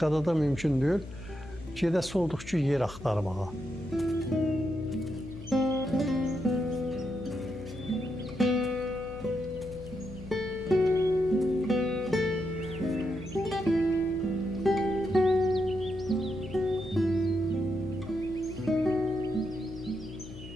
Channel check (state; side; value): noise; left; hum, 14 dB below the sound